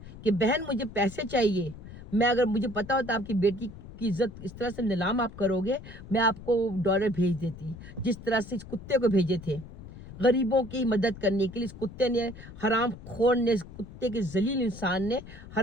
कि बहन मुझे पैसे चाहिए, मैं अगर मुझे पता होता आपकी बेटी की इज्जत इस तरह से नीलाम आप करोगे, मैं आपको डॉलर भेज देती, जिस तरह से इस कुत्ते को भेजे थे गरीबों की मदद करने के लिए। इस कुत्ते ने, हराम खोर ने, इस कुत्ते के जलील इंसान ने,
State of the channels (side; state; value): left; noise; rumble, 15 dB below the sound